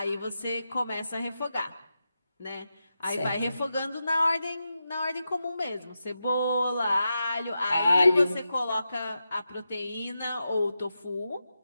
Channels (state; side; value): inverted; both; correlation -0.89